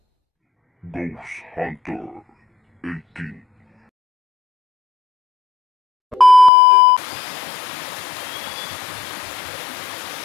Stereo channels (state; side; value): drops out; right; at 6.5 s